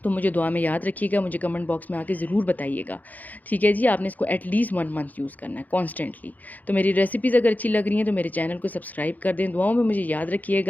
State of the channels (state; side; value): late; right; 0.081 ms